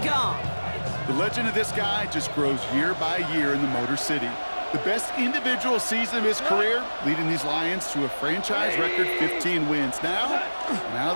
Goff. The legend of this guy just grows year by year in the Motor City. The best individual season of his career, leading these Lions to a franchise record 15 wins. Now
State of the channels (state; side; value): inverted; both; correlation -1.00